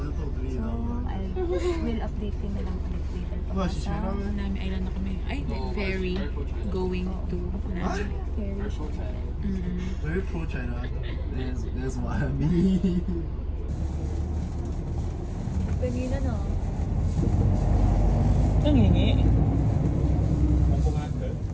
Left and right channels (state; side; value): identical; both; correlation 1.00